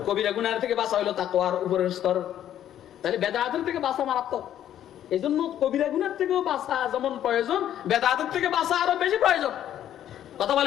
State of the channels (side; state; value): right; quieter; 11.1 dB